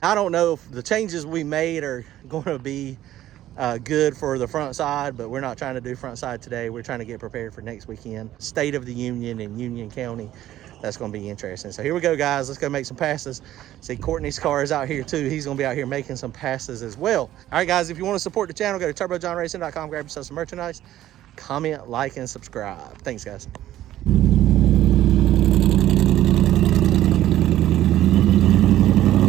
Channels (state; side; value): quieter; left; 13.4 dB